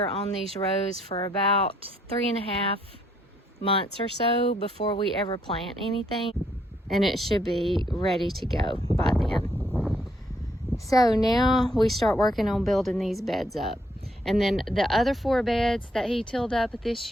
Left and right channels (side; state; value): both; normal; correlation 0.71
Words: on these rows for about 3.5 months or so before we ever plant anything, and it should be ready to go by then. So now we start working on building these beds up, and then the other 4 beds that he tilled up this